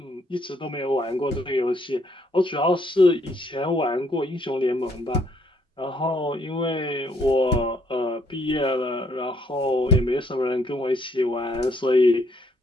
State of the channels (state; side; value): normal; both; correlation 0.69